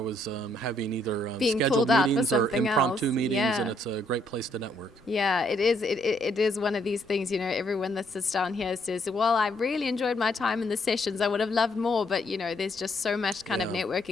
having either Being scheduled pulled out for meetings or something impromptu else. meetings, Yeah. and it's a great place to network. Yeah, it is. It is one of these things, everyone that sits down here says, well, I really enjoyed my time in the sessions. I would have loved more, but, there's just so much kind of Yeah.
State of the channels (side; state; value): both; normal; correlation 0.71